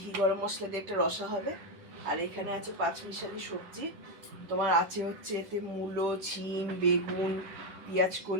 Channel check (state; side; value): late; left; 10 ms